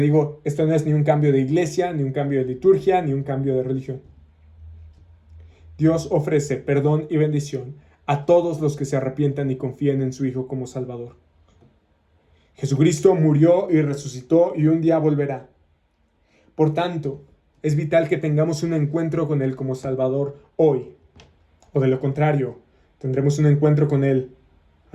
digo, esto no es ni un cambio de iglesia, ni un cambio de liturgia, ni un cambio de religión. Dios ofrece perdón y bendición a todos los que se arrepientan y confíen en su Hijo como Salvador. Jesucristo murió y resucitó y un día volverá. Por tanto, es vital que tengamos un encuentro con Él como Salvador hoy. O de lo contrario, tendremos un encuentro con Él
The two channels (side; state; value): both; identical; correlation 1.00